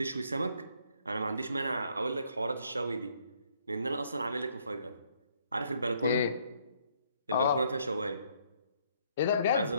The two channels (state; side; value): inverted; both; correlation -0.68